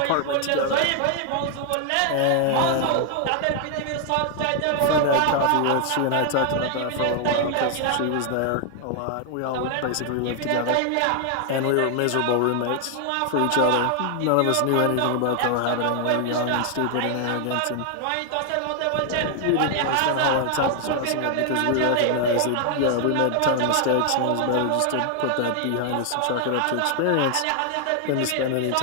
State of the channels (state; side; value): different; both; correlation 0.00